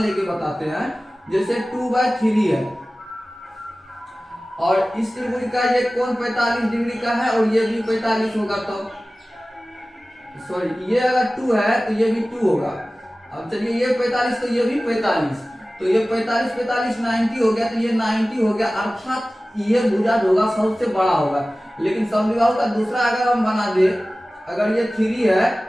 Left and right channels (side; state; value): both; normal; correlation 0.97